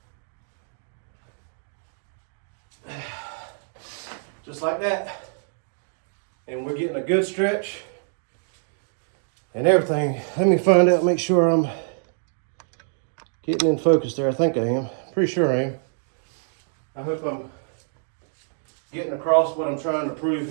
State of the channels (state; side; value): silent; left; digital silence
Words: Just like that. And we're getting a good stretch and everything. Let me find out, make sure I'm getting in focus there. I think I am. Pretty sure I am. I hope I'm getting across what I'm trying to prove